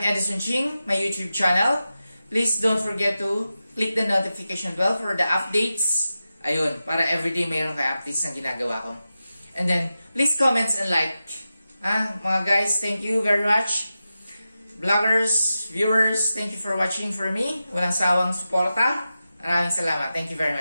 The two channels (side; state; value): both; inverted; correlation -0.92